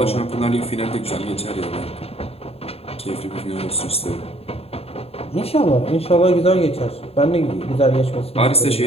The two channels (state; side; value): late; right; 0.29 ms